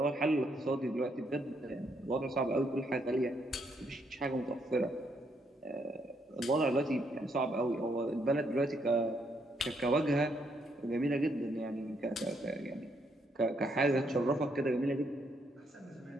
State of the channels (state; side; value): normal; both; correlation 0.74